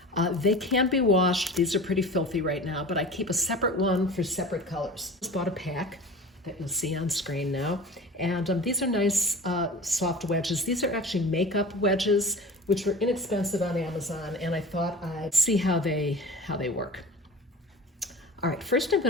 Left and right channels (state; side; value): normal; both; correlation 0.37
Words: They can be washed. These are pretty filthy right now, but I keep a separate one for separate colors. Just bought a pack that you'll see on screen now. And these are nice soft wedges. These are actually makeup wedges, which were inexpensive on Amazon, and I thought I'd see how they work. All right, first I'm